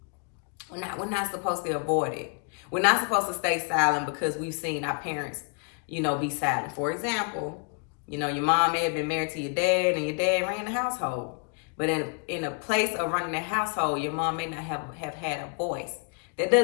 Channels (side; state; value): right; quieter; 38.0 dB